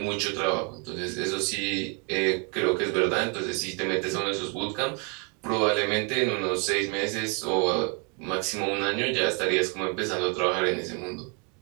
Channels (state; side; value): quieter; left; 35.1 dB